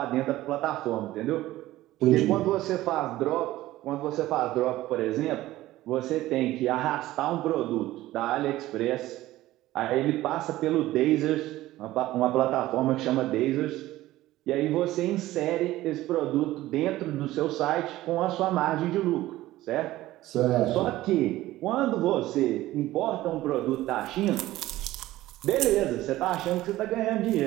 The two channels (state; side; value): quieter; left; 16.1 dB